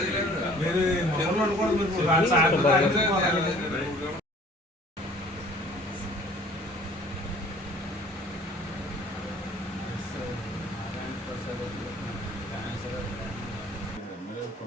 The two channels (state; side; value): normal; both; correlation 0.52